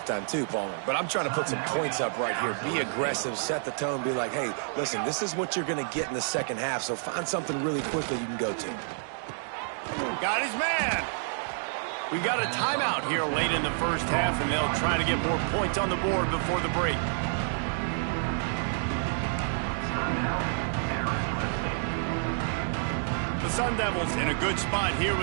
too, Palmer. But I'm trying to put some points up right here. Be aggressive, set the tone, be like, hey, listen, this is what you're going to get in the second half, so find something really quickly you can go to. Got his man. We got a timeout here late in the first half, and they'll try to get more points on the board before the break. The Sun Devils in a good spot here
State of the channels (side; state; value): left; silent; digital silence